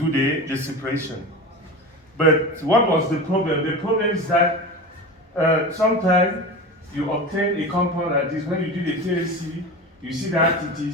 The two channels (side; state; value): both; normal; correlation 0.29